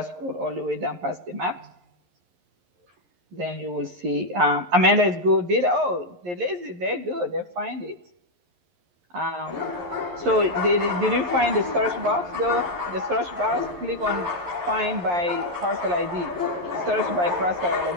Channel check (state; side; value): late; left; 11 ms